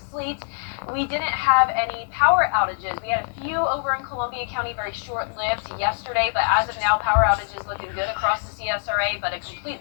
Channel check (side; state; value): right; silent; digital silence